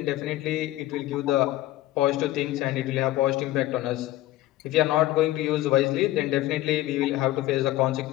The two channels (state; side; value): quieter; right; 15.9 dB